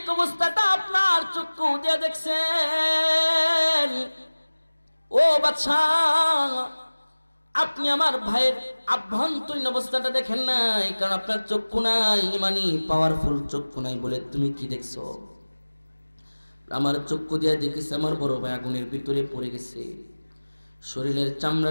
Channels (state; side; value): inverted; both; correlation -1.00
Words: অবস্থাটা আপনার চক্ষু দিয়ে দেখছেন। ও বাদশা, আপনি আমার ভাইয়ের আভ্যন্তরীণ অবস্থাটা দেখেন নাই, কারণ আপনার চক্ষু নাই, ইমানি পাওয়ারফুল চক্ষু নাই বলে তুমি কি দেখছো? আমার চক্ষু দিয়ে দেখেছি আমার বড় ভাই আগুনের ভিতরে পড়ে গেছে, শরীরের